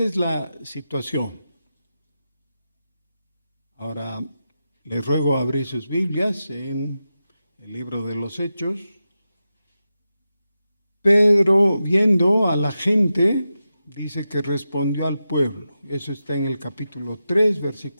es la situación. Ahora, les ruego abrir sus Biblias en el libro de los Hechos. Pedro, viendo a la gente, dice que respondió al pueblo. Eso está en el capítulo 3,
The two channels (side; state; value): both; inverted; correlation -0.91